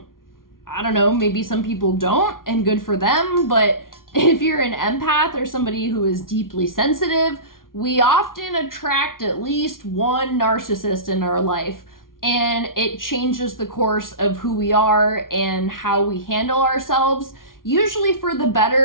I don't know, maybe some people don't, and good for them, but if you're an empath or somebody who is deeply sensitive, we often attract at least one narcissist in our life, and it changes the course of who we are and how we handle ourselves, usually for the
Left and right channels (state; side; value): late; right; 0.91 ms